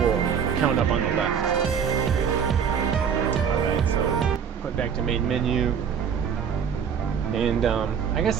count up on the left. Alright, so put back to main menu. And I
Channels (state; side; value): quieter; left; 7.4 dB